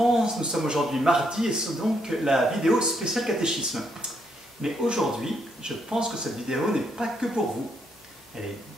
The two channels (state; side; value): normal; both; correlation 0.75